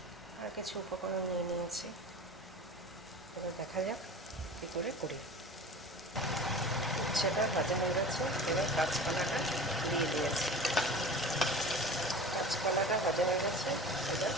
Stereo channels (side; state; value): both; normal; correlation 0.37